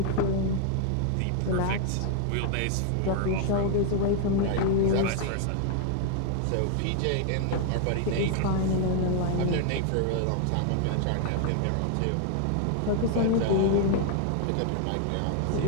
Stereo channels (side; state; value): both; different; correlation 0.00